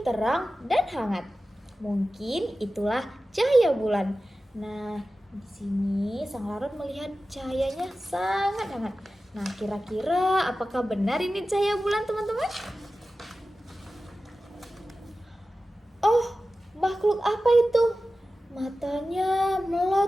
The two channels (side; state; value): both; normal; correlation 0.94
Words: dan hangat. Mungkin itulah cahaya bulan. Nah, di sini sang laron melihat cahayanya sangat hangat. Nah, kira-kira apakah benar ini cahaya bulan, teman-teman? Oh, makhluk apa itu? Matanya